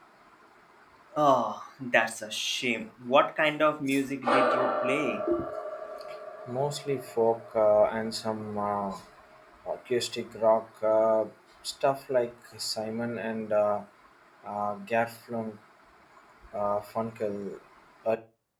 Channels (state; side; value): identical; both; correlation 1.00